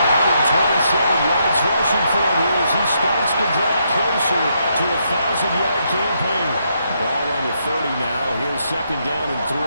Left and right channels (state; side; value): inverted; both; correlation -0.77